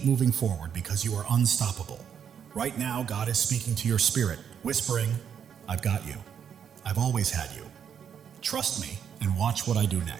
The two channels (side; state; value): left; quieter; 8.1 dB